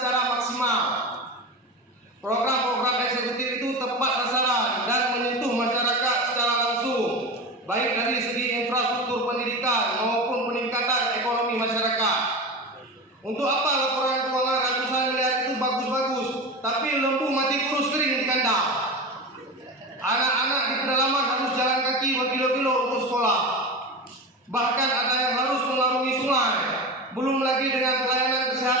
maksimal. Program-program eksekutif itu tepat sasaran dan menyentuh masyarakat secara langsung, baik dari segi infrastruktur pendidikan maupun peningkatan ekonomi masyarakat. Untuk apa laporan keuangan ratusan miliar itu bagus-bagus, tapi lembu mati kurus kering di kandang? Anak-anak di pedalaman harus jalan kaki berkilo-kilo untuk sekolah. Bahkan ada yang harus mengarungi sungai. Belum lagi dengan pelayanan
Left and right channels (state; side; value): normal; both; correlation 0.25